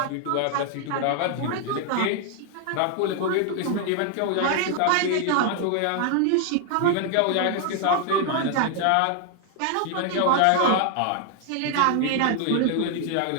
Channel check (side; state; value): both; different; correlation 0.00